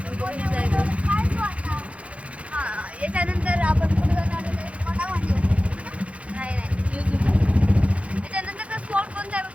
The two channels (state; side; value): late; left; 0.063 ms